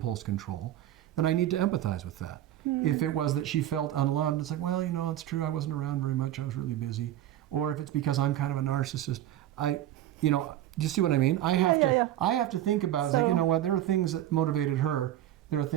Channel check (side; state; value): left; quieter; 12.7 dB